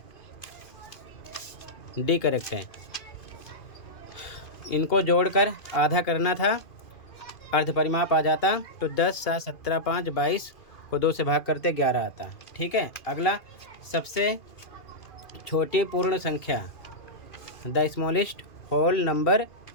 डी करेक्ट है। इनको जोड़कर आधा करना था, अर्ध परिमाप आ जाता। तो 10, 7, 17, 5, 22 को 2 से भाग करते 11 आता। ठीक है, अगला सबसे छोटी पूर्ण संख्या, the smallest whole number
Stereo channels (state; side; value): late; right; 2.5 ms